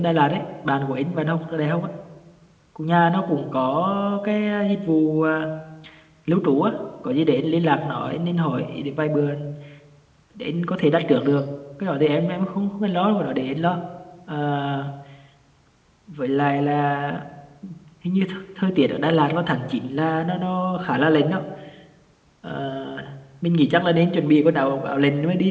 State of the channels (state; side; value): identical; both; correlation 1.00